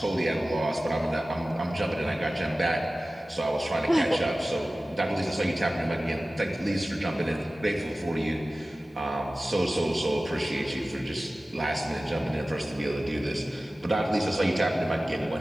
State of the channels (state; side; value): normal; both; correlation 0.96